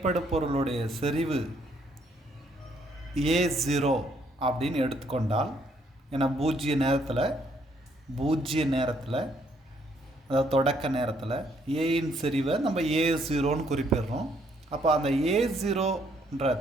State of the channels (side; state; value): both; normal; correlation 0.69